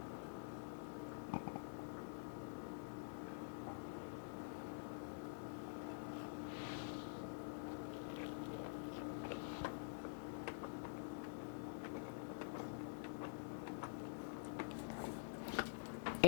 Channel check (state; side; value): silent; right; digital silence